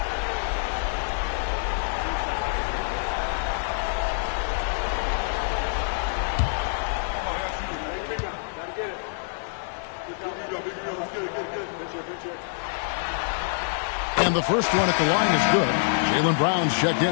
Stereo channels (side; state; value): right; silent; digital silence